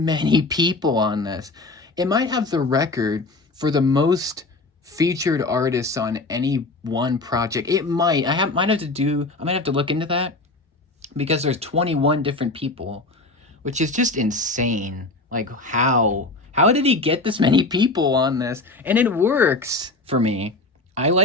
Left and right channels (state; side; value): quieter; right; 3.1 dB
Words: people on this. It might have the record for the most featured artists on any one project. It might. Might have to do. I might have to look into that because there's 21 different people, which is just insane. Like how did he get this many people on this? And it works for me. I